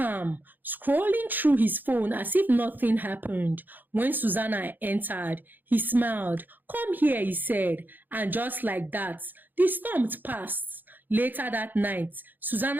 scrolling through his phone as if nothing happened. When Susanna entered, he smiled. Come here, he said, and just like that, the storm passed. Later that night,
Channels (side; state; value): left; late; 0.088 ms